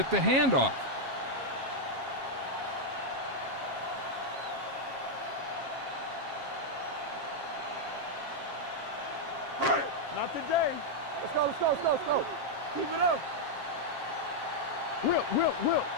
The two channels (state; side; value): late; left; 7.4 ms